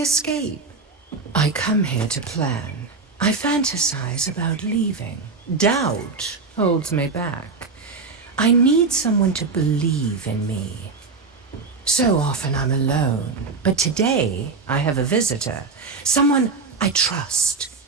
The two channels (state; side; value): quieter; left; 4.3 dB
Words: I come here to plan. I fantasize about leaving. Doubt holds me back. I need someone to believe in me. So often I'm alone, but today I have a visitor. Someone I trust.